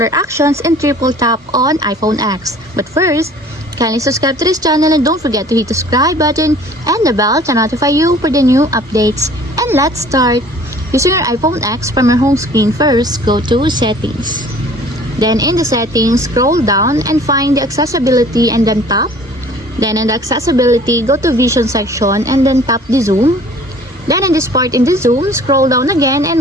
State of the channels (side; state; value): both; normal; correlation 0.50